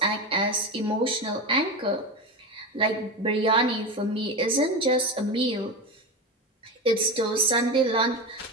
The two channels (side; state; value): both; normal; correlation 0.20